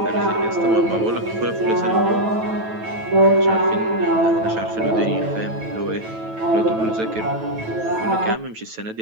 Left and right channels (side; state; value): left; late; 9.1 ms